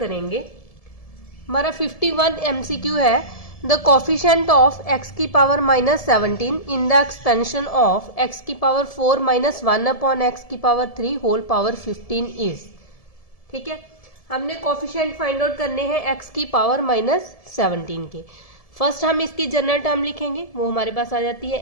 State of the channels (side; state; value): right; late; 1.7 ms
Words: हमारा 51 एमसीक्यू है, द कोफिशिएंट ऑफ एक्स की power -17 in the expansion of x की पावर 4 - 1 अपॉन एक्स की पावर 3 होल पावर 15 इज। ठीक है, हमने कोफिशिएंट फाइंड आउट करने हैं एक्स की पावर -17 के। फर्स्ट हम इसकी जनरल टर्म लिखेंगे, वो हमारे पास आ जाती